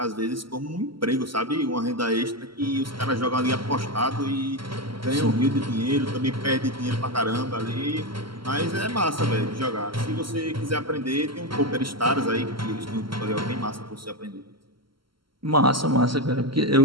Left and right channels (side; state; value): left; late; 0.74 ms